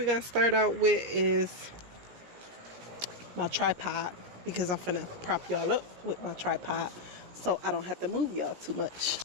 going to start out with is my tripod, because I'm finna prop y'all up with my tripod so I don't have to move y'all too much.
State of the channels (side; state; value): left; late; 17 ms